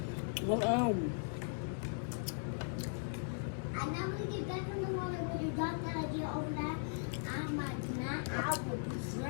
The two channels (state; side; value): silent; right; digital silence